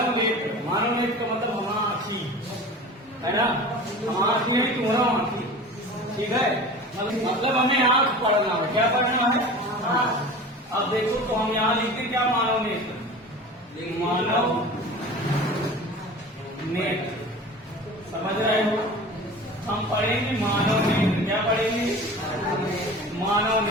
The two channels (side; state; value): both; normal; correlation 0.37